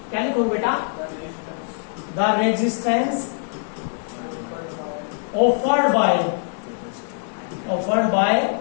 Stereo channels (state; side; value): silent; right; digital silence